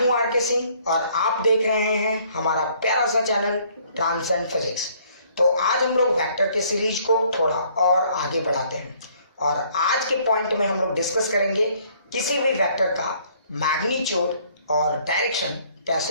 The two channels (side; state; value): both; inverted; correlation -0.61